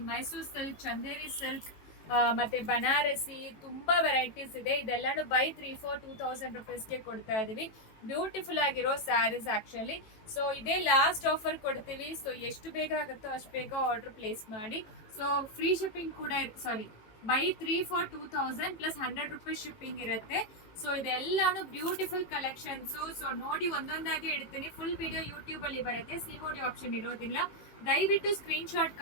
ಮೈಸೂರು ಸಿಲ್ಕ್, ಚಂದೇರಿ ಸಿಲ್ಕ್ ಮತ್ತೆ ಬನಾರಸಿ ತುಂಬಾ ವೆರೈಟೀಸ್ ಇದೆ. ಇದೆಲ್ಲಾನು ಬೈ 3 for 2000 rupeesಗೆ ಕೊಡ್ತಾ ಇದೀವಿ. ಬ್ಯೂಟಿಫುಲ್ ಆಗಿರೋ ಸ್ಯಾರೀಸ್ ಆಕ್ಚುಲಿ. ಸೊ ಇದೇ ಲಾಸ್ಟ್ ಆಫರ್ ಕೊಡ್ತೀವಿ. ಸೊ ಎಷ್ಟು ಬೇಗ ಆಗುತ್ತೋ ಅಷ್ಟು ಬೇಗ ಆರ್ಡರ್ ಪ್ಲೇಸ್ ಮಾಡಿ. ಸೊ ಫ್ರೀ ಶಿಪ್ಪಿಂಗ್ ಕೂಡ buy 3 for 2000 plus 100 rupees shipping ಇರುತ್ತೆ. ಸೊ ಇದೆಲ್ಲಾನು ಬ್ಯೂಟಿಫುಲ್ ಕಲೆಕ್ಷನ್ಸ್. ಸೊ ನೋಡಿ ಒಂದೊಂದಾಗಿ ಇಡ್ತೀನಿ. ಫುಲ್ ವಿಡಿಯೋ ಯೂಟ್ಯೂಬ್ ಅಲ್ಲಿ ಬರುತ್ತೆ, ಸಿಒಡಿ ಆಪ್ಷನ್ ಇರೋದಿಲ್ಲ. ದಯವಿಟ್ಟು ಸ್ಕ್ರೀನ್ ಶಾಟ್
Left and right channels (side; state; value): right; late; 18 ms